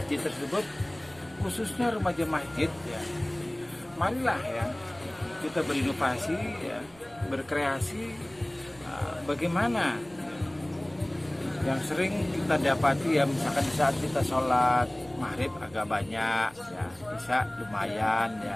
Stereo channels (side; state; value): right; noise; rumble, 25 dB below the sound